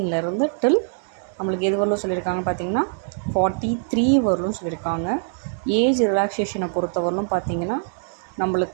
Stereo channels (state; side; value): silent; left; digital silence